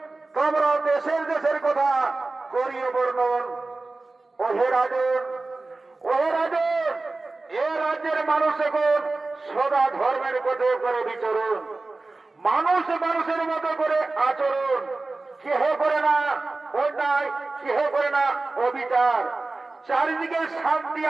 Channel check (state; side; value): quieter; left; 3.4 dB